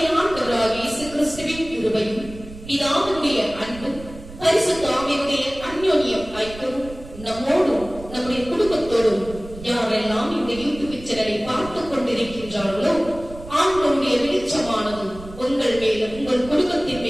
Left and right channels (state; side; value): noise; right; rumble, 15 dB below the sound